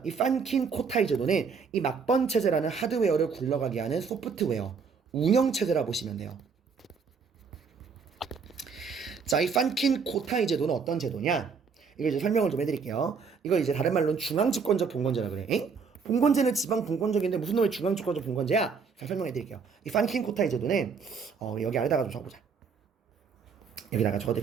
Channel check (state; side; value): quieter; left; 5.6 dB